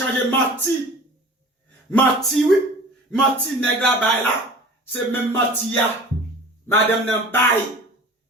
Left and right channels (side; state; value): both; normal; correlation 0.42